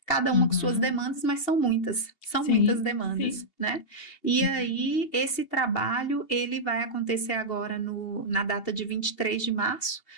cada uma com suas demandas, mas são muitas demandas, né? E aí, esse trabalho, ele vai acontecer agora na data de 23 de março,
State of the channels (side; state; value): right; late; 2.7 ms